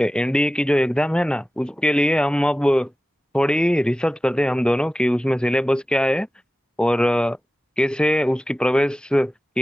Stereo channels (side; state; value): both; normal; correlation 0.95